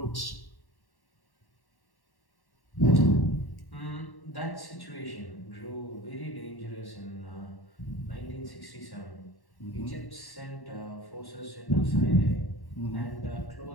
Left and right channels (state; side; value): late; right; 1.1 ms